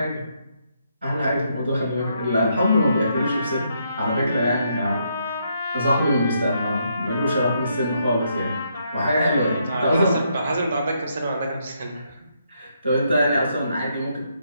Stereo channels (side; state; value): both; inverted; correlation -0.76